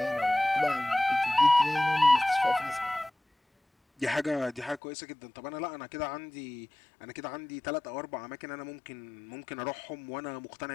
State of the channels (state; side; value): drops out; right; at 4.8 s